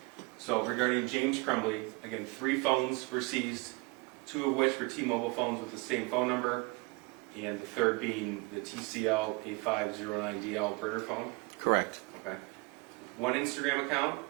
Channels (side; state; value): left; quieter; 27.7 dB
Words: So regarding James Crumbley, again, 3 phones were seized, 2 of which were T-Mobile phones with the same phone number, and the third being the TCL 8509DL burner phone. Correct. Okay. 1 Instagram account,